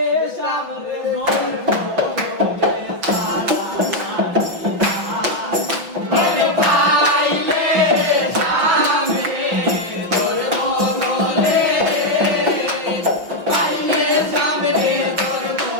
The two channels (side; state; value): left; late; 6.3 ms